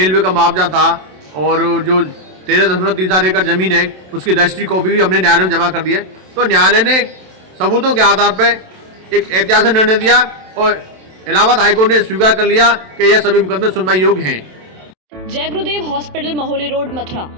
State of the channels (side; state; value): left; late; 27 ms